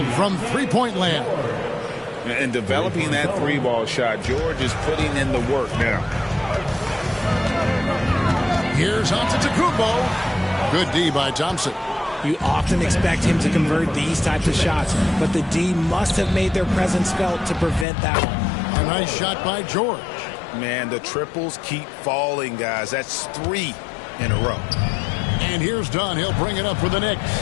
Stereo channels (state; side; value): drops out; right; at 17.9 s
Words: from three-point land. And developing that three-ball shot, George is putting in the work now. Here's Antetokounmpo. Good D by Thompson. You often expect him to convert these types of shots, but the D must have made their presence felt to prevent that one. A nice shot by George. Man, the triples keep falling, guys. That's 3 in a row. And here's Dunn. He'll bring it up for the Knicks.